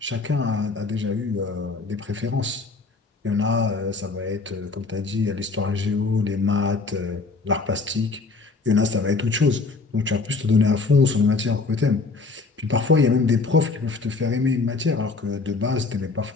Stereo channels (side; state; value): right; quieter; 4.0 dB